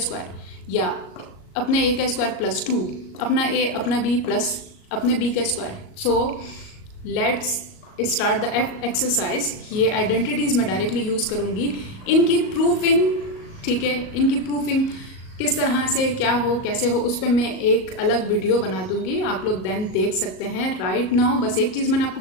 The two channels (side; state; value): right; late; 37 ms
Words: या अपने ए का स्क्वायर +2 अपना ए अपना बी प्लस अपने बी का square. So let's start the exercise. ये आइडेंटिटीज मैं डायरेक्टली यूज करूंगी, इनकी प्रूफिंग, ठीक है, इनकी प्रूफिंग किस तरह से क्या हो कैसे हो उस पर मैं एक अलग वीडियो बना दूंगी, आप लोग देन देख सकते हैं। राइट नाउ बस एक चीज मैंने आपको